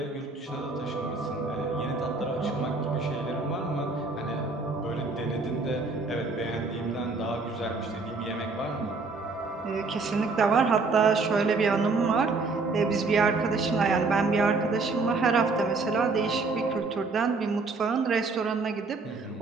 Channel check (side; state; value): left; quieter; 3.9 dB